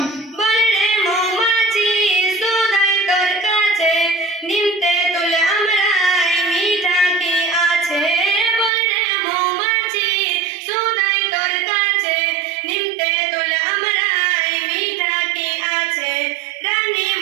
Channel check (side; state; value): left; drops out; at 8.7 s